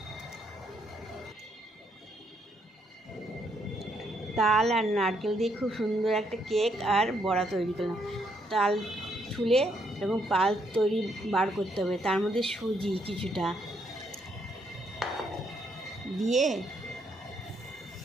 তাল আর নারকেল দিয়ে খুব সুন্দর একটা কেক আর বড়া তৈরি করলাম। তাল ছুলে এরকম পাল তৈরি বার করতে হবে, তার মধ্যে সুজি কিছুটা দিয়ে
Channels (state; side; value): normal; both; correlation 0.73